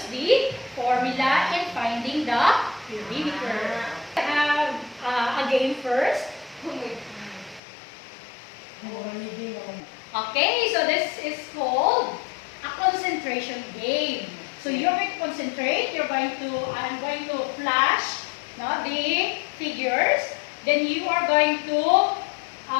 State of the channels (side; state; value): right; drops out; at 7.6 s